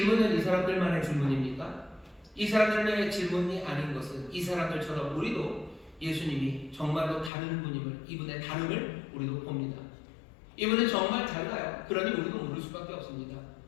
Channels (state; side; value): drops out; right; at 7.3 s